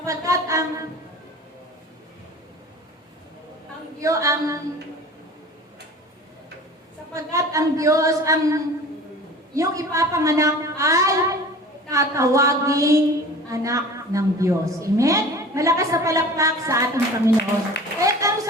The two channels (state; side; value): normal; both; correlation 0.40